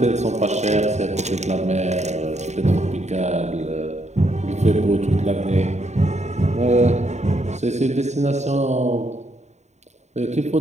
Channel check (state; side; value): late; left; 0.33 ms